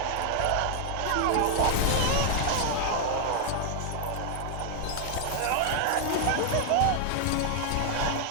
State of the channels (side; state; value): both; different; correlation 0.00